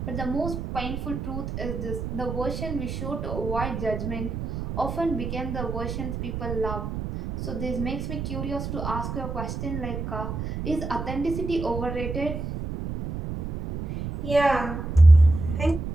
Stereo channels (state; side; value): noise; right; rumble, 5 dB below the sound